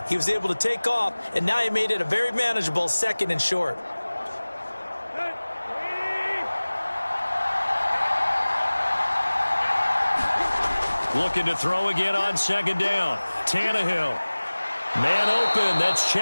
He was able to take off, and now he made it a very manageable 2nd and short. Looking to throw again on 2nd down. Tannehill. Man open. That's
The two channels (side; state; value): both; inverted; correlation -1.00